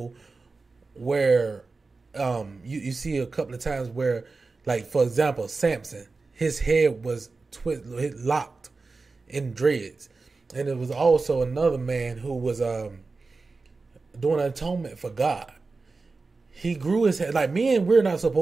where you see a couple of times where, like, for example, Samson, his head was locked in dreads, and it was also another man who was doing an atonement for God. He grew his hair. Like, men, we're not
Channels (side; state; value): left; quieter; 3.9 dB